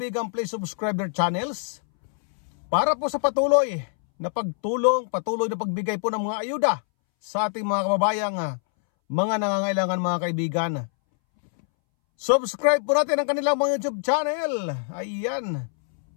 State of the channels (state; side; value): silent; right; 62 dB below the other